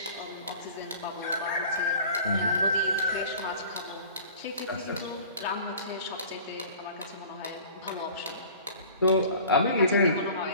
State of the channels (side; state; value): both; inverted; correlation -0.44